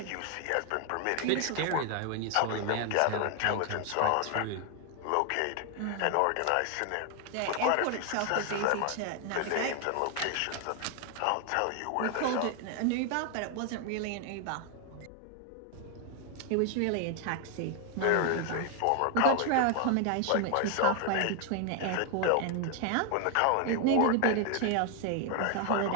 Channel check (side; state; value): both; different; correlation 0.00